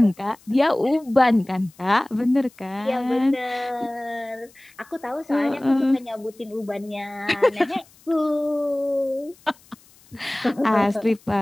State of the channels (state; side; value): noise; left; hiss, 28 dB below the sound